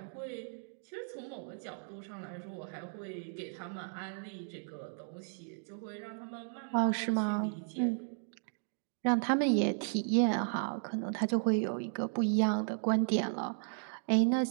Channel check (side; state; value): left; silent; digital silence